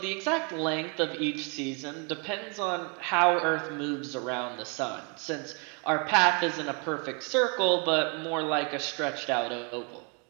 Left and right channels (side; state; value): left; quieter; 34.2 dB